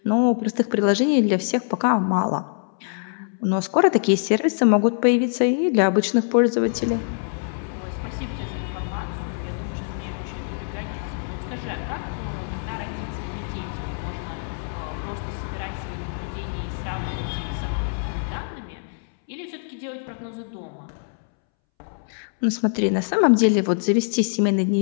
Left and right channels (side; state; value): right; silent; 63 dB below the other